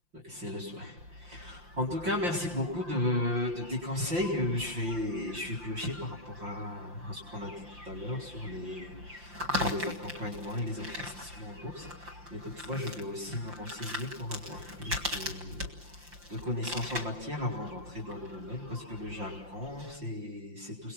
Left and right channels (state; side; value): late; left; 5.8 ms